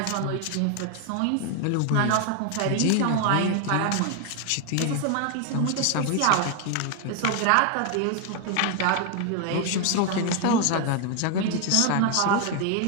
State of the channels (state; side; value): different; both; correlation 0.00